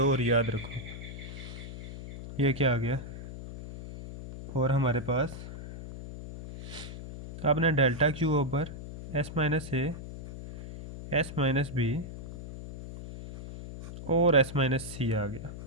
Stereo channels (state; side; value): noise; left; hum, 11 dB below the sound